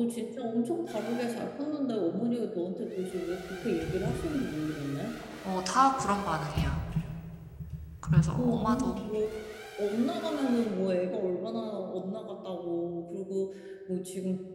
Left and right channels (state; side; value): identical; both; correlation 1.00